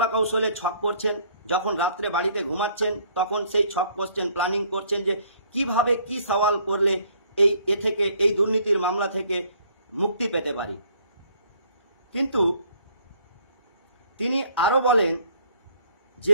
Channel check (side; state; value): both; inverted; correlation -0.61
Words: কৌশলে ছক করছেন। যখন রাত্রে বাড়িতে ঘুমাচ্ছেন তখন সেই ছক করছেন, প্ল্যানিং করছেন যে কিভাবে কি সওয়াল করলে এই দুর্নীতির মামলা থেকে মুক্তি পেতে পারি। কিন্তু তিনি আরও বলেন